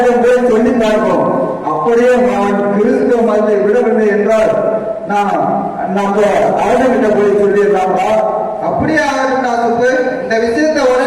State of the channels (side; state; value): both; identical; correlation 1.00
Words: போய் சொல்லி பார்ப்போம். அப்படியே நான் கிறிஸ்துவ மதத்தை விடவில்லை என்றால் நான் நம்ம அரசங்கிட்ட போய் சொல்லிடலாம்ப்பா. அப்படியே ஆகட்டும் சுப்பு. இந்த விஷயத்தை